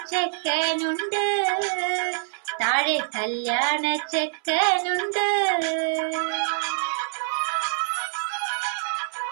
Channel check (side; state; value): left; silent; 62 dB below the other